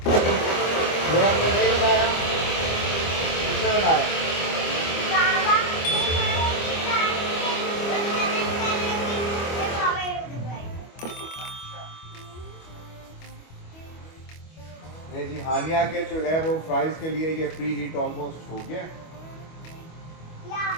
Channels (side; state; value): right; late; 25 ms